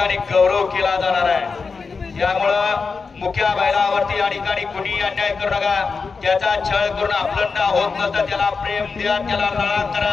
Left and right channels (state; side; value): quieter; right; 4.8 dB